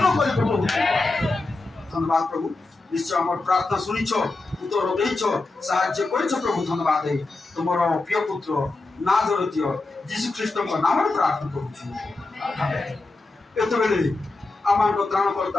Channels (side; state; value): right; quieter; 3.3 dB